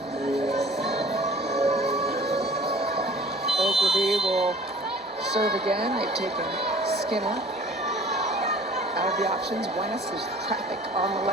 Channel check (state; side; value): normal; both; correlation 0.48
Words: Ogilvy will serve again. They've taken Skinner out of the options. Buenas, there's traffic on the